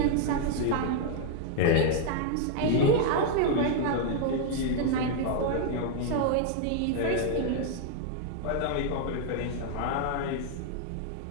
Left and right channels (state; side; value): different; both; correlation 0.00